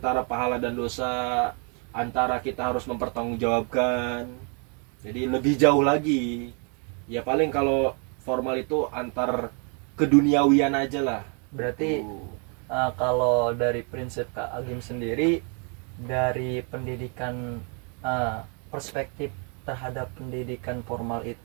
pahala dan dosa, antara kita harus mempertanggungjawabkan, jadi lebih jauh lagi. Ya paling kalau formal itu antar keduniawian aja lah. Berarti kalau dari prinsip Kak Agim sendiri, dari pendidikan perspektif terhadap pendidikan formal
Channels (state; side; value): quieter; left; 37.6 dB